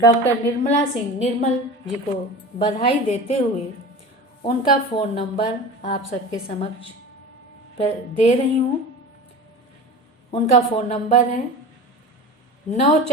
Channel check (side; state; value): both; normal; correlation 0.33